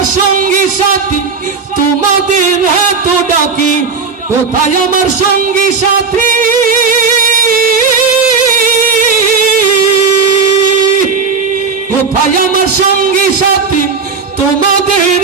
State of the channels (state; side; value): quieter; left; 5.0 dB